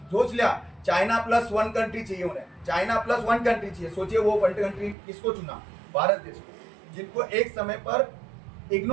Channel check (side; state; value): left; drops out; at 5.0 s